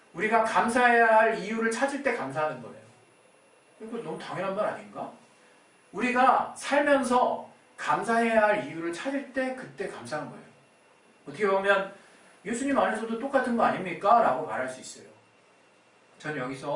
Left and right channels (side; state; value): both; identical; correlation 1.00